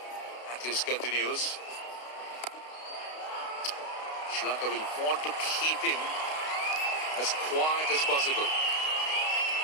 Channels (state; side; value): late; right; 32 ms